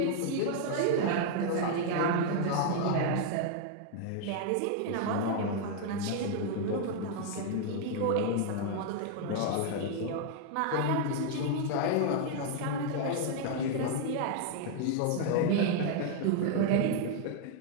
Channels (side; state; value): both; different; correlation 0.00